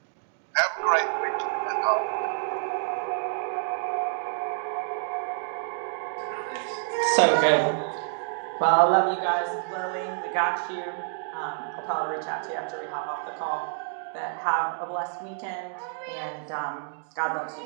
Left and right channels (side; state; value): left; silent; digital silence